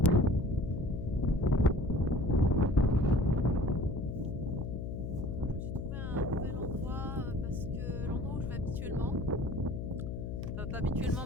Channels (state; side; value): noise; left; hum, 5 dB below the sound